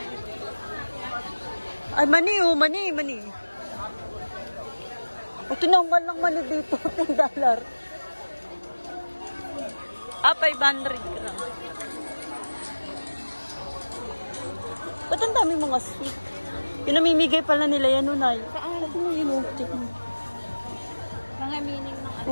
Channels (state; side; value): inverted; both; correlation -1.00